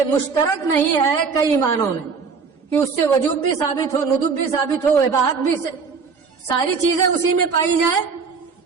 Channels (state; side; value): quieter; left; 5.3 dB